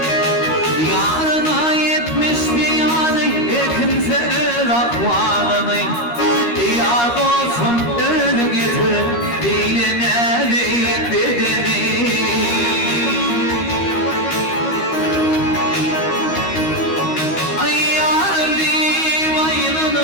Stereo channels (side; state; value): right; late; 13 ms